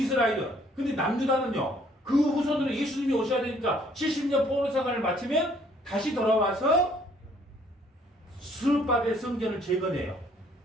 근데 남유다는요. 그 후손으로 예수님이 오셔야 되니까 70년 포로생활을 마치면 다시 돌아와서 스룹바벨 성전을 재건해요.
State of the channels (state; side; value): normal; both; correlation 0.62